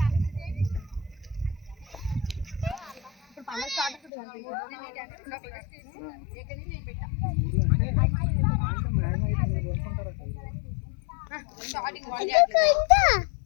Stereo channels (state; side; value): drops out; right; at 4.1 s